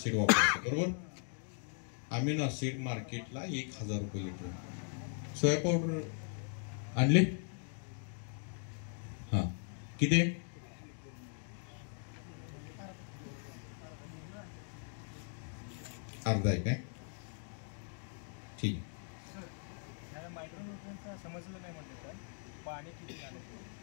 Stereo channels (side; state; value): right; silent; 52 dB below the other